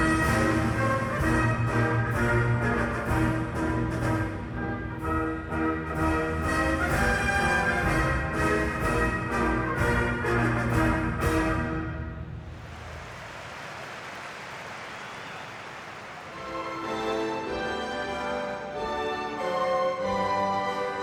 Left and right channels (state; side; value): identical; both; correlation 1.00